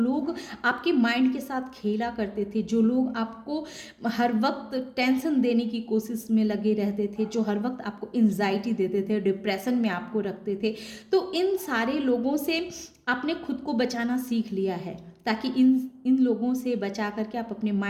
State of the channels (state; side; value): identical; both; correlation 1.00